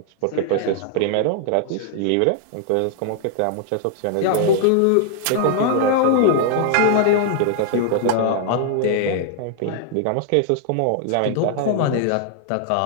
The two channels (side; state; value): both; different; correlation 0.00